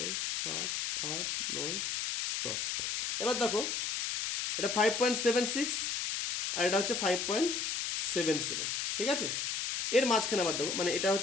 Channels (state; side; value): noise; left; hiss, 1 dB below the sound